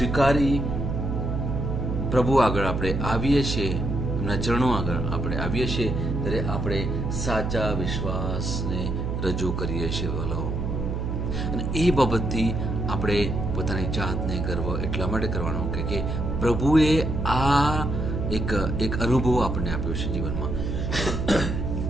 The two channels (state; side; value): noise; right; hum, 2 dB below the sound